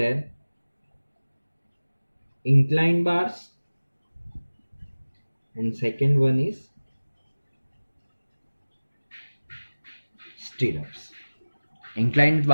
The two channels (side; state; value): both; inverted; correlation -1.00